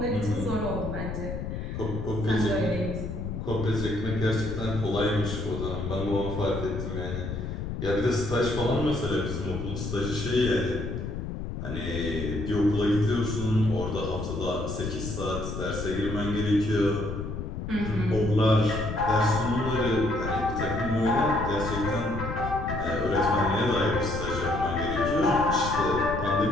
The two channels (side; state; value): left; noise; rumble, 5 dB below the sound